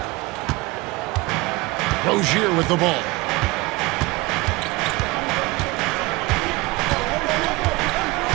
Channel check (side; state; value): left; quieter; 22.5 dB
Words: Rozier with the ball.